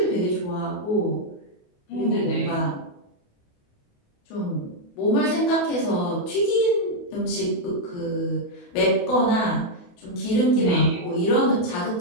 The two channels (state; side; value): late; right; 28 ms